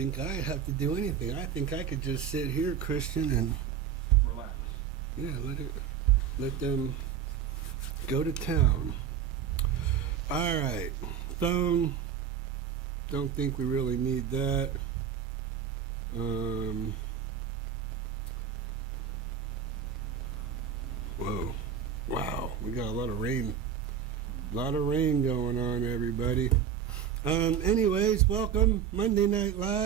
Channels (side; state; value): left; quieter; 8.3 dB